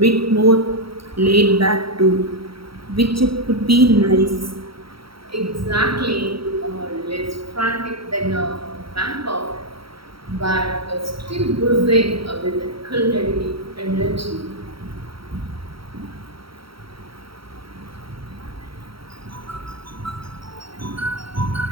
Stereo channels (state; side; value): late; left; 0.75 ms